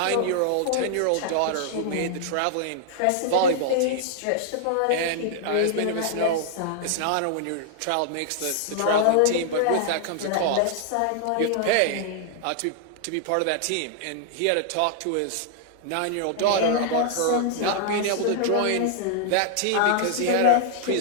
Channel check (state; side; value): different; both; correlation -0.01